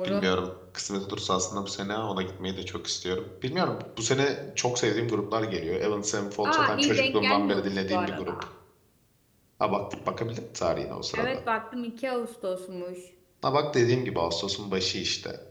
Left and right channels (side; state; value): both; identical; correlation 1.00